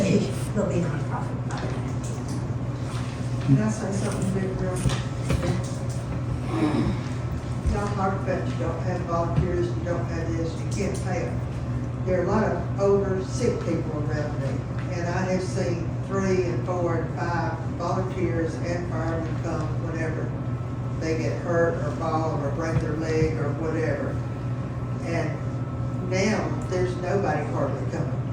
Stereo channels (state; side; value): identical; both; correlation 1.00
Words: there'll be nonprofit fire. Can I say something big real? Y'all talk about you don't have volunteers, you don't have this, you can't pay them. There are a lot of older, sick people around me, and I have seen 4, and 5 volunteers and firemen come whenever they get hurt or fall or break their leg or whatever. And now, there's nobody hardly coming.